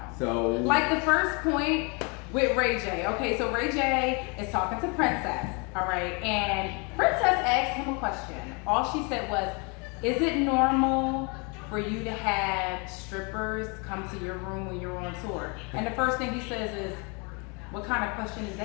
So, like the first point with Ray J. Okay, so Ray J is talking to Princess, all right, and Princess asked him a question. All she said was, "Is it normal for you to have strippers come to your room when you're on tour?" And the first thing he says is, "What kind of question is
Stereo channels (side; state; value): right; quieter; 32.4 dB